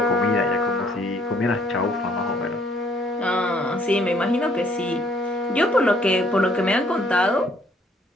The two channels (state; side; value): normal; both; correlation 0.63